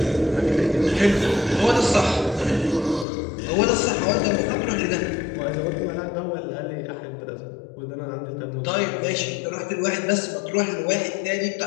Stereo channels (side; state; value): right; drops out; at 3.1 s